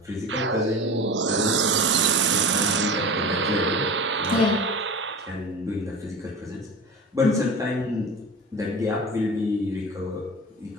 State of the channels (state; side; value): normal; both; correlation 0.33